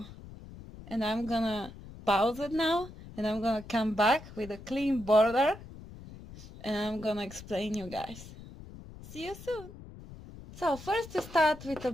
and I'm gonna pause it now, and I'm gonna come back with a clean border, and I'm gonna explain you guys. See you soon. So first you start with a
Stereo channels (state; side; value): noise; left; rumble, 16 dB below the sound